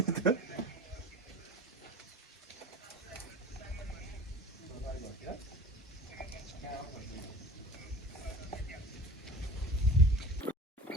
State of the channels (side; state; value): both; normal; correlation 0.39